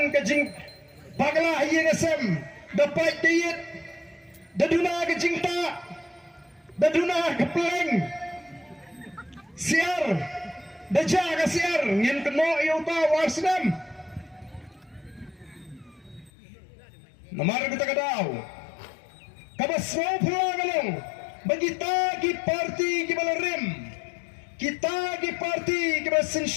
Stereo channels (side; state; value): right; drops out; at 16.3 s